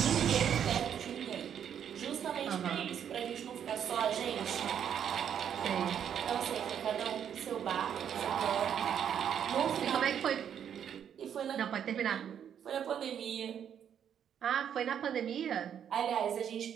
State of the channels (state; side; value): quieter; left; 8.8 dB